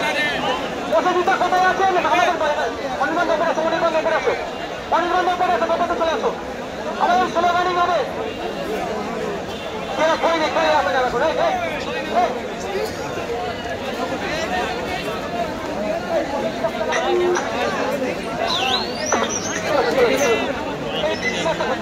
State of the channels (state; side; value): identical; both; correlation 1.00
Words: পছন্দিতা কোথায় আছেন? আমাদের অনির্বাণ ব্যাপার আছে, অনির্বাণ ব্যাপার আছে, অনির্বাণ ব্যাপার আছে, ব্যাপারে চলে আসো। আমাদের স্লোগানিং হবে কেন কই রে কই আসে যাবে করে